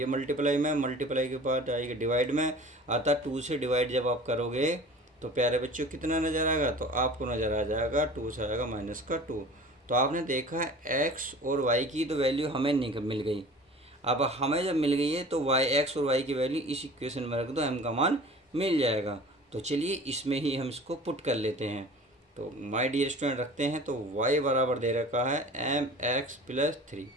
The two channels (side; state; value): both; normal; correlation 0.42